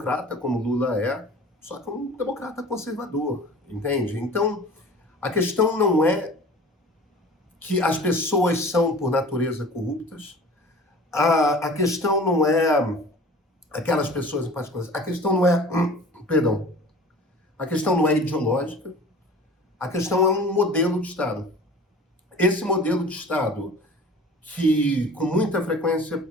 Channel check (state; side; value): normal; both; correlation 0.42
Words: como Lula é, só que um democrata conservador, entende? Então, a questão não é que as pessoas são, por natureza, corruptas. A questão não é aquelas pessoas em particular. A questão não é... A questão não é ideológica. A questão é um modelo de Estado. esse modelo de Estado que, com muita